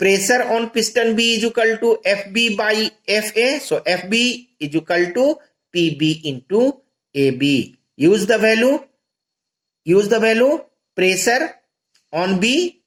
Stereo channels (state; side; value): identical; both; correlation 1.00